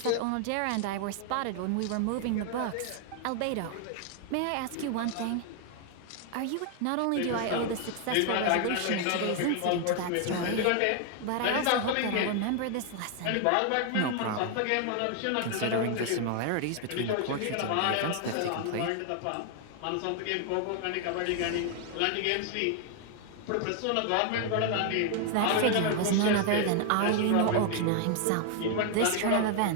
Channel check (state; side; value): different; both; correlation 0.00